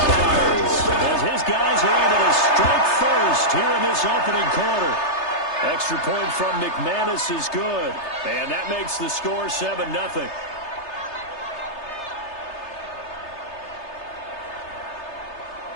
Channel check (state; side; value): late; right; 3.3 ms